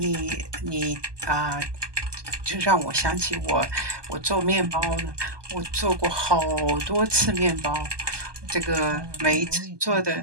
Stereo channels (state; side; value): late; left; 1.2 ms